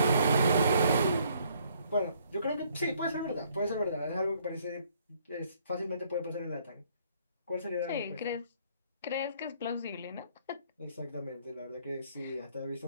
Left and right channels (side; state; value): both; inverted; correlation -0.65